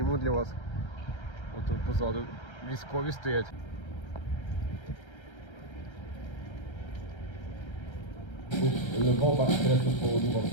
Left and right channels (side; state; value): right; late; 1.3 ms